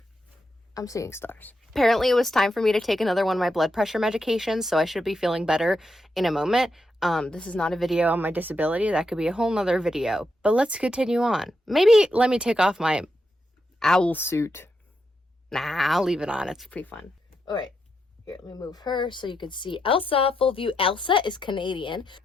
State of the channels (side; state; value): both; normal; correlation 0.83